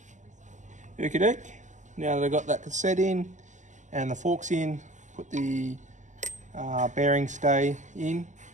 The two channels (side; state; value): left; late; 0.35 ms